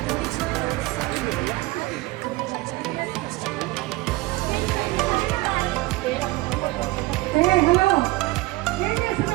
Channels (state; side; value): quieter; left; 20.7 dB